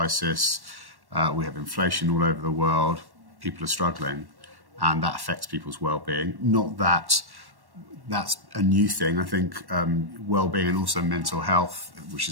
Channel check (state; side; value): late; left; 1.1 ms